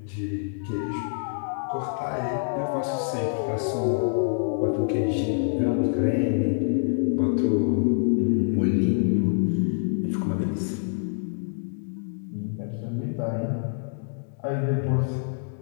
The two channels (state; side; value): silent; right; digital silence